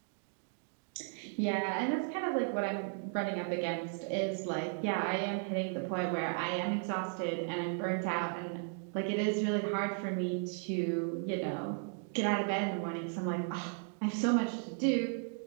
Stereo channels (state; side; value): silent; left; 54 dB below the other